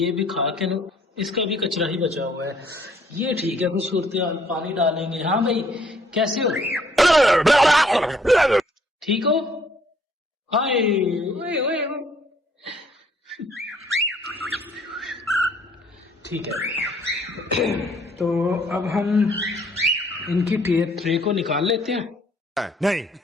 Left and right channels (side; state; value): both; normal; correlation 0.62